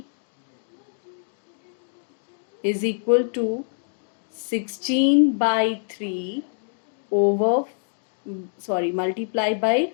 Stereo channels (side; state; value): right; silent; digital silence